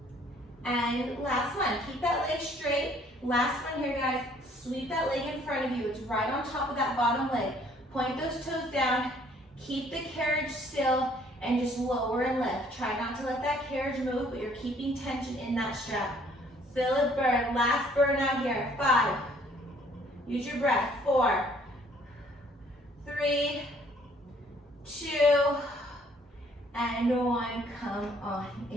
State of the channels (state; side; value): normal; both; correlation 0.60